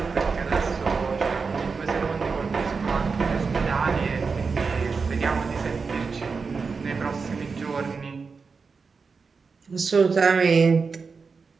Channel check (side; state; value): left; quieter; 4.9 dB